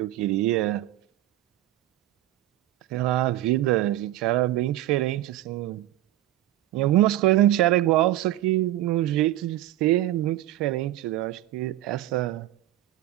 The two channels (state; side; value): quieter; left; 14.4 dB